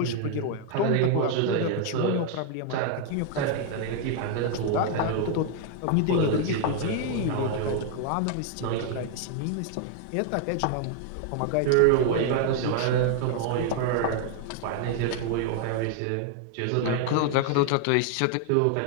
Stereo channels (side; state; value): both; different; correlation 0.00